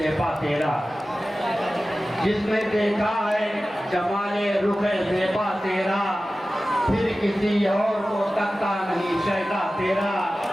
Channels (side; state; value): both; normal; correlation 0.95